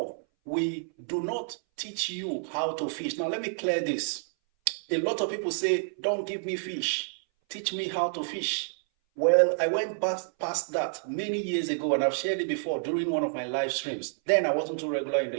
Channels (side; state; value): left; silent; 58 dB below the other